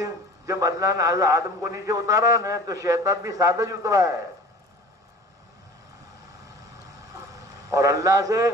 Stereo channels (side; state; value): both; normal; correlation 0.43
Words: جب اللہ نے حضرت آدم کو نیچے اتارا نا تو شیطان بھی ساتھ ہی اترا ہے اور اللہ سے